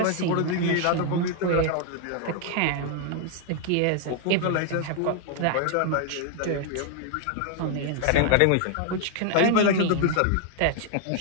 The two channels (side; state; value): both; different; correlation 0.00